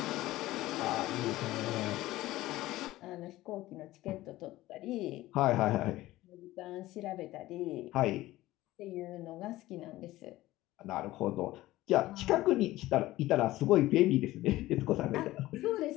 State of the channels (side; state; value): right; quieter; 16.8 dB